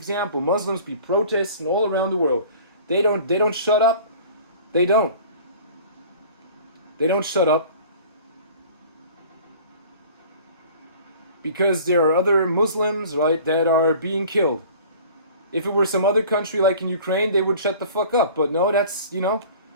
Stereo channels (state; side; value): inverted; both; correlation -0.45